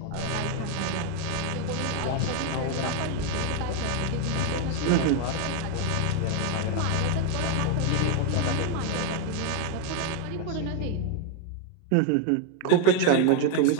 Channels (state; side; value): different; both; correlation 0.01